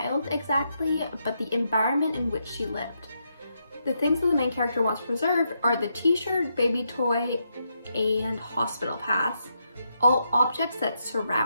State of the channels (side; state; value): both; inverted; correlation -0.81